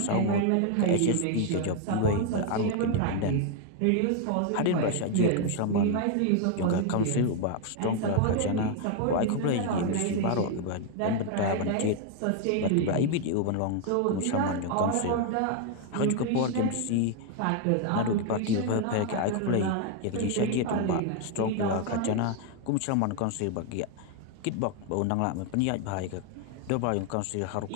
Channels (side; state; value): both; different; correlation 0.01